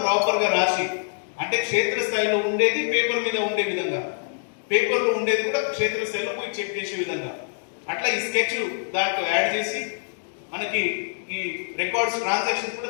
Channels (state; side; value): silent; right; digital silence